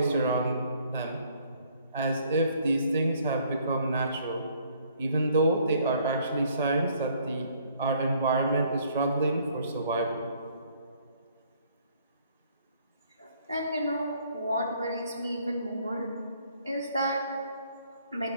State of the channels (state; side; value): inverted; both; correlation -0.63